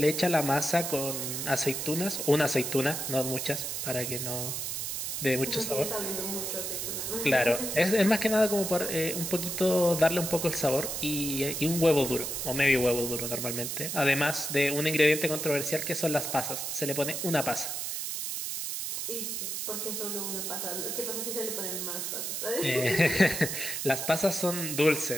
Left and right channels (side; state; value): right; noise; hiss, 3 dB below the sound